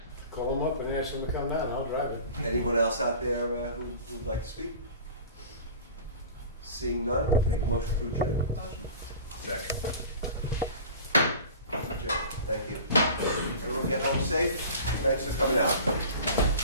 Call them up and ask them to come down, I'll drive it. Anyone else out there who'd like to speak? Seeing none, make a motion to adjourn. Motion. Second. Adjourn. Thank you. Everyone get home safe. Thanks for coming out.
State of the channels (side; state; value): both; inverted; correlation -0.39